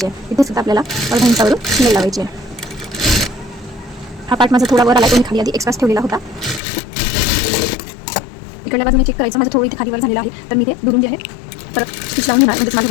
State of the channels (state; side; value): drops out; right; at 6.6 s